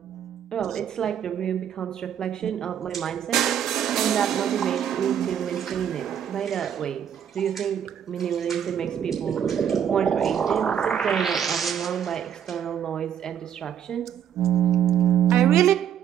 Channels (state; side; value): quieter; left; 9.2 dB